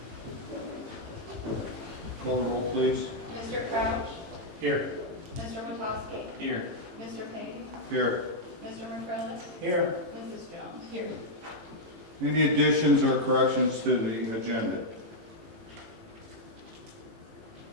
Call the roll, please. Mr. Crouch? Here. Mr. Witowski? Here. Mr. Payne? Here. Mr. McCrillis? Here. Mrs. Jones? Here. Any additions or corrections to the agenda?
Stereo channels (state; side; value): late; left; 18 ms